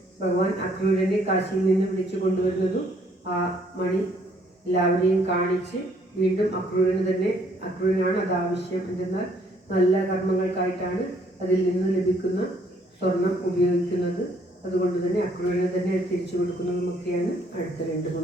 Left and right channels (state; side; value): normal; both; correlation 0.65